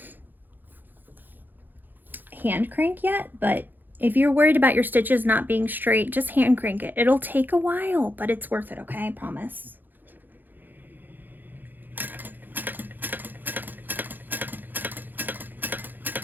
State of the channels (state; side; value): late; left; 0.088 ms